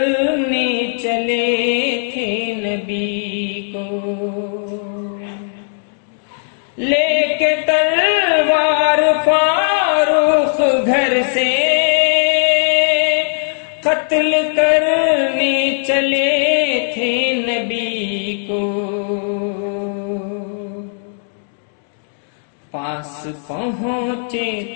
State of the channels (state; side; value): silent; right; 68 dB below the other